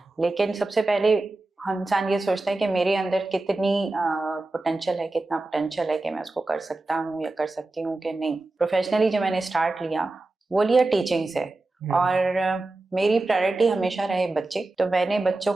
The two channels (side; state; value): left; quieter; 3.0 dB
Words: लेकिन सबसे पहले इंसान ये सोचता है कि मेरे अंदर कितनी पोटेंशियल है, कितना पोटेंशियल है कि मैं उसको कर सकता हूँ या कर सकती हूँ कि नहीं। प्रोफेशनली जो मैंने स्टार्ट लिया वो लिया टीचिंग से और मेरी प्रायोरिटी हमेशा रहे बच्चे। तो मैंने बच्चों